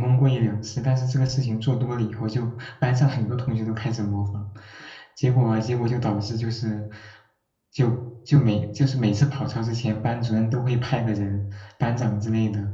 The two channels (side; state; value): both; identical; correlation 1.00